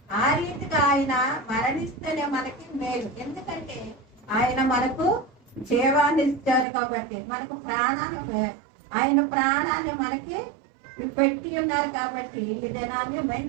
ఆ రీతిగా ఆయన మరణిస్తేనే మనకి మేలు. ఎందుకంటే ఆయన మనకు జీవాన్ని ఇచ్చారు కాబట్టి, మనకు ప్రాణాన్ని, ఆయన ప్రాణాన్ని మనకి పెట్టి ఉన్నారు కాబట్టి ఈ దినాన్ని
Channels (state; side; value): drops out; left; at 6.7 s